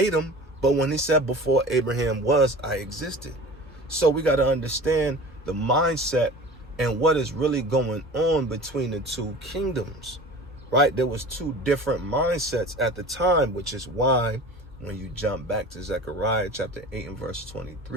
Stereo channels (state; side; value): normal; both; correlation 0.38